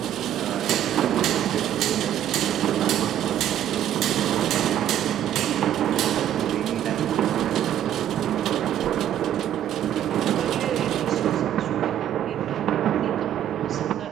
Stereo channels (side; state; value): left; quieter; 11.1 dB